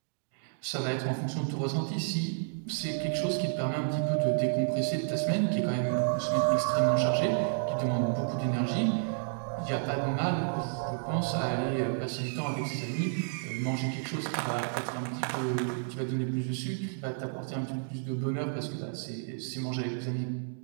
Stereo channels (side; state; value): left; silent; digital silence